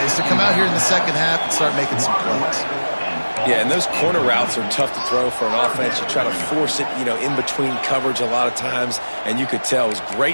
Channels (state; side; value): inverted; both; correlation -1.00